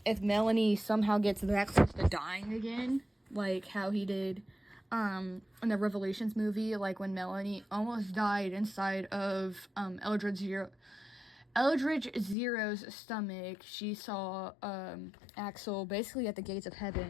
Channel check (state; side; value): drops out; right; at 12.4 s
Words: if Melanie somehow gets that close to dying again, like how he did in the Revelations movie, like when Melanie almost died inside of Eldridge Zero's stomach. She saw Axol basically at the gates of